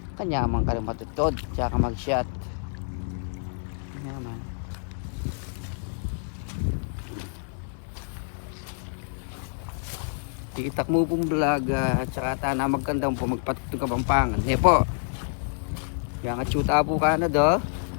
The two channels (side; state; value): right; silent; digital silence